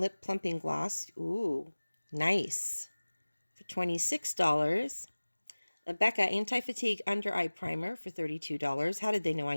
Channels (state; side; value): inverted; both; correlation -1.00